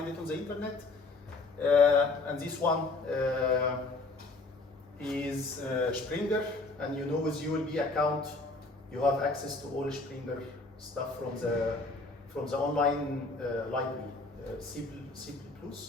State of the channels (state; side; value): quieter; right; 3.4 dB